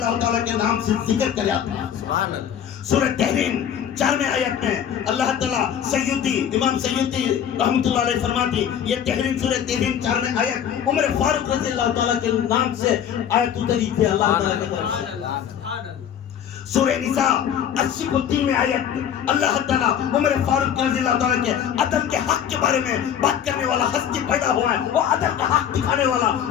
تعالیٰ کے نام سے ذکر کرا تھا. سورہ تحریم 4 آیت میں اللہ تعالیٰ سیوطی امام سیوطی رحمت اللہ علیہ فرماتی، یہ تحریم سورہ تحریم 4 آیت عمر فاروق رضی اللہ تعالیٰ کے نام سے آیت اتری تھی اللہ تعالیٰ کی طرف سے. سورہ نساء 83 آیت اللہ تعالیٰ عمر فاروق رضی اللہ تعالیٰ کے عدل کے حق کے بارے میں بات کرنے والا ہستی پیدا ہوا ہے، وہ عدل کا حق دکھانے والا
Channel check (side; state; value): right; quieter; 9.2 dB